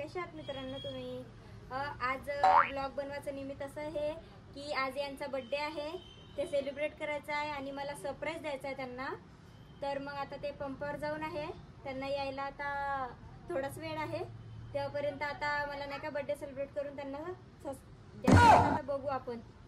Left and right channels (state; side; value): identical; both; correlation 1.00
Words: आहात मित्रांनो तुम्ही? आज ब्लॉग बनवायचं निमित्त असं आहे की आज यांचा बर्थडे आहे, ते सेलिब्रेट करायचं आहे आणि मला सरप्राईज द्यायचं आहे त्यांना. तर मग आता ते पंपावर जाऊन आहे, त्यांना यायला आता थोडाच वेळ आहे. तेव्हापर्यंत आता मला नाही का बर्थडे सेलिब्रेट करून त्यांना आता बघू आपण